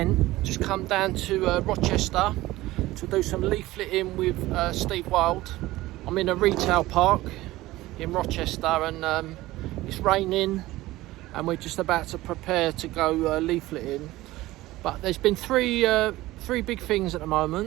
just come down to Rochester to do some leafleting with Steve Wild. I'm in a retail park in Rochester and it's raining and we're just about to prepare to go leafleting. But there's been three big things at the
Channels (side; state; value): left; quieter; 17.7 dB